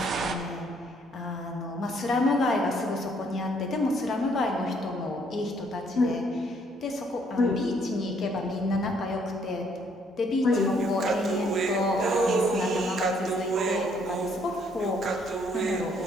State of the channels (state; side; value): normal; both; correlation 0.67